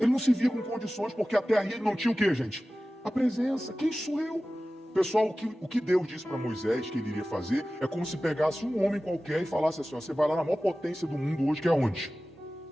não se via com condições, porque até aí ele não tinha o que, gente? A presença. Quem sou eu? Pessoal, o que Deus disse para Moisés que ele iria fazer é como se pegasse um homem qualquer e falasse assim: ó, você vai lá na maior potência do mundo hoje, que é onde?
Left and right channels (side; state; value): both; normal; correlation 0.96